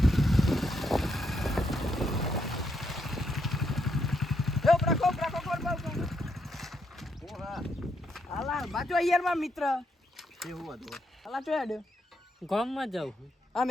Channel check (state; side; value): normal; both; correlation 0.77